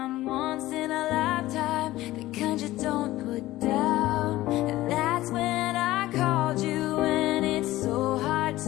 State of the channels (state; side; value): quieter; right; 16.5 dB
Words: once in a lifetime, the kind you don't put down. And that's when I called you, and it's so hard